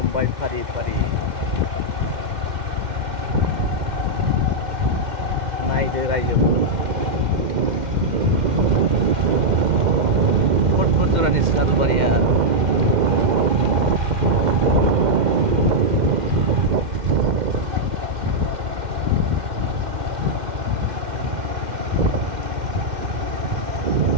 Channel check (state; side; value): late; left; 2.1 ms